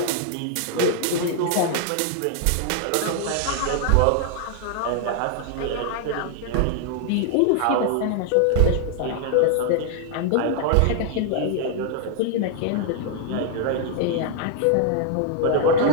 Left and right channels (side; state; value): both; different; correlation 0.00